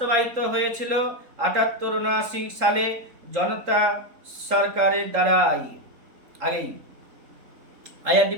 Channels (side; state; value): left; late; 3.8 ms